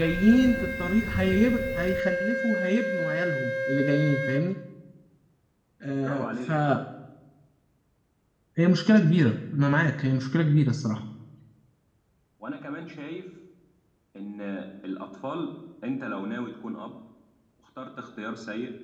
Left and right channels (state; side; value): identical; both; correlation 1.00